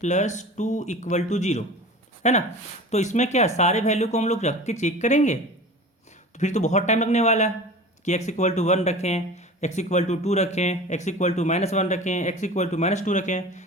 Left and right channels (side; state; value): both; normal; correlation 0.37